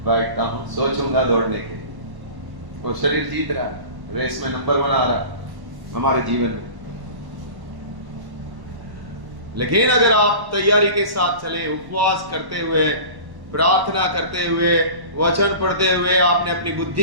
बैठता हूं, सोचूंगा दौड़ने के। वो शरीर जीत रहा है, रेस में नंबर 1 आ रहा है हमारे जीवन में। लेकिन अगर आप तैयारी के साथ चले, उपवास करते हुए, प्रार्थना करते हुए, वचन पढ़ते हुए, आपने अपनी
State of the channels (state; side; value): late; left; 1.1 ms